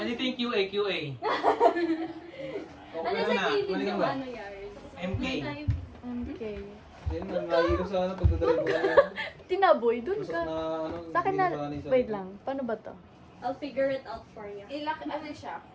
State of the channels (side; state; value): both; identical; correlation 1.00